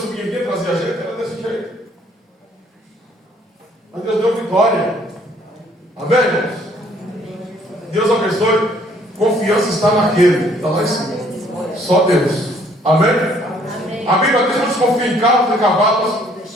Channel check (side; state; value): both; normal; correlation 0.62